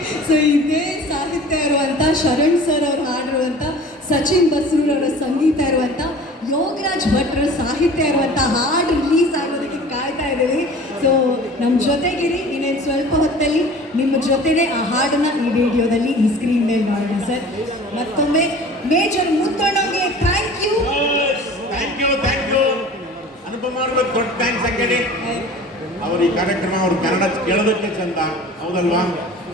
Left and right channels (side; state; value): both; normal; correlation 0.43